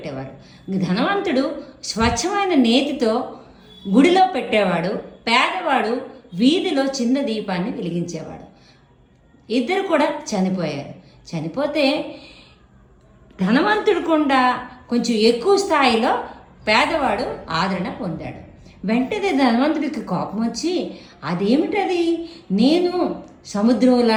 ధనవంతుడు స్వచ్ఛమైన నేతితో గుడిలో పెట్టేవాడు, పేదవాడు వీధిలో చిన్న దీపాన్ని వెలిగించేవాడు. ఇద్దరు కూడా చనిపోయారు. చనిపోతే ధనవంతుడు కూడా కొంచెం ఎక్కువ స్థాయిలో పేదవాడు ఆదరణ పొందాడు. వెంటనే ధనవంతుడికి కోపం వచ్చి, అదేమిటది, నేను సముద్రం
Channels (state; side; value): identical; both; correlation 1.00